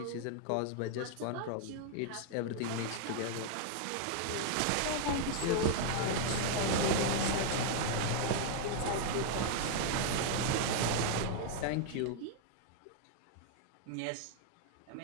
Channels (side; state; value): both; different; correlation 0.00